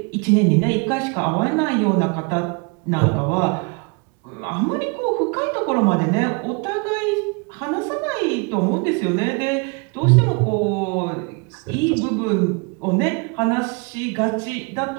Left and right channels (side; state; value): left; quieter; 32.3 dB